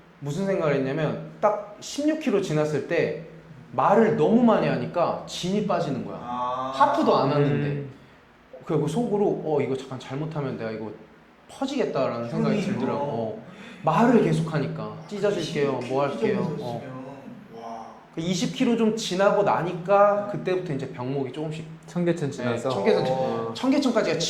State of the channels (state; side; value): identical; both; correlation 1.00